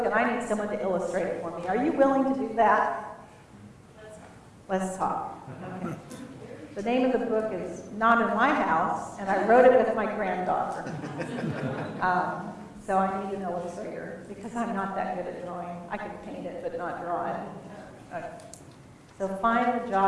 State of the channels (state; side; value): identical; both; correlation 1.00